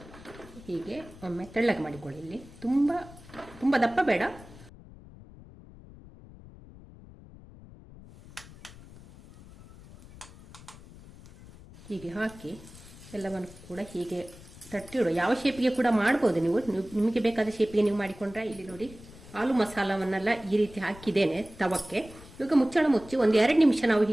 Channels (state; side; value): noise; left; rumble, 19 dB below the sound